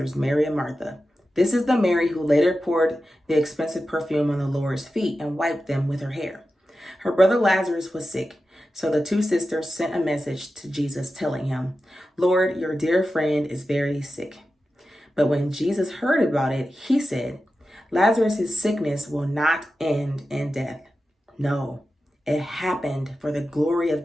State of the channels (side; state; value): both; normal; correlation 0.92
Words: Mary and Martha. This is the Mary who later poured the expensive perfume on the Lord's feet and wiped them with her hair. Her brother Lazarus was sick, so the two sisters sent a message to Jesus telling him, "Lord, your dear friend is very sick." But when Jesus heard about it, he said, "Lazarus' sickness will not end in death. No, it happened for the glory of